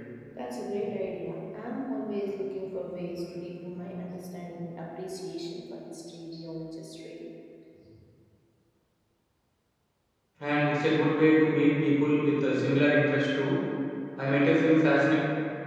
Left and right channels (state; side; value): identical; both; correlation 1.00